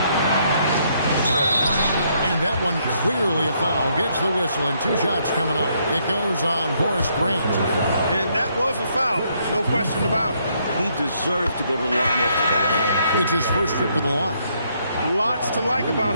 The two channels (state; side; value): inverted; both; correlation -0.72